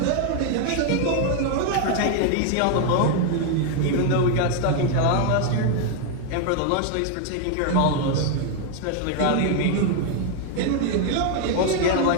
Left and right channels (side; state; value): both; different; correlation 0.00